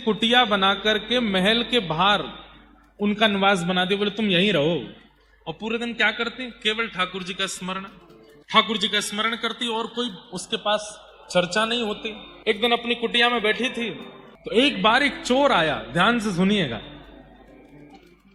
बना करके महल के बाहर उनका निवास बना दिया। बोले तुम यहीं रहो, और पूरे दिन क्या करती? केवल ठाकुर जी का स्मरण, ठाकुर जी का स्मरण करती, और कोई उसके पास चर्चा नहीं होती। एक दिन अपनी कुटिया में बैठी थी तो एक बार एक चोर आया, ध्यान से सुनिएगा,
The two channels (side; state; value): both; identical; correlation 1.00